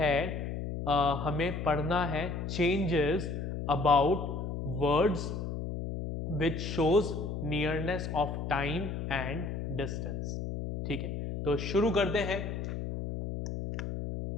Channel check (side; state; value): left; noise; hum, 4 dB below the sound